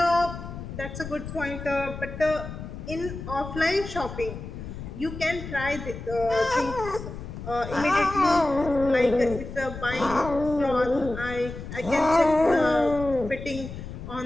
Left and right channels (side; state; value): left; noise; rumble, 10 dB below the sound